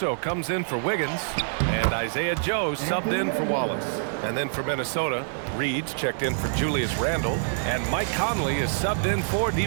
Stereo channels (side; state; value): left; silent; 58 dB below the other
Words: comes in for Wiggins. And Isaiah Joe subbed in for Wallace. And then for Minnesota, Reed's checked in for Julius Randle. And Mike Conley is subbed in for